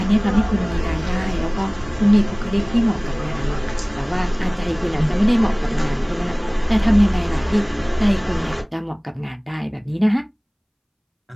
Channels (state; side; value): identical; both; correlation 1.00